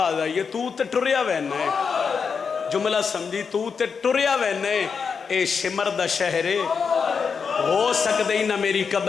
आई है, तू ते टुरिया वैना है। जुमला समझी, तू ते टुरिया वैना है, ए शिमर दा शहरे हो सकते ही ना मेरी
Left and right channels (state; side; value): quieter; right; 5.9 dB